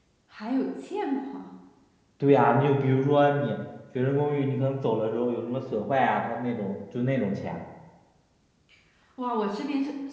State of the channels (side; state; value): both; identical; correlation 1.00